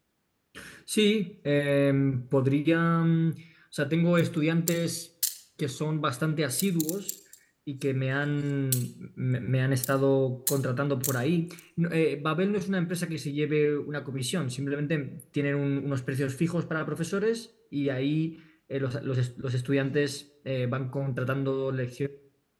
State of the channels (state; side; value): identical; both; correlation 1.00